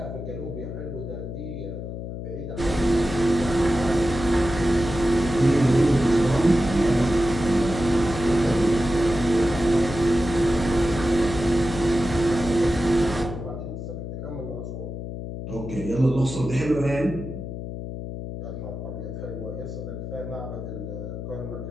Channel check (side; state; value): left; noise; hum, 7 dB below the sound